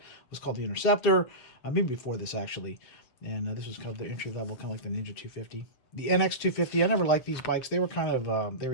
was called the Interceptor, maybe before this actually. And this was kind of the entry level, kind of like the Ninja 250. The NX 250, I never liked these bikes. They were kind of, they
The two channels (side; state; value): right; late; 7.5 ms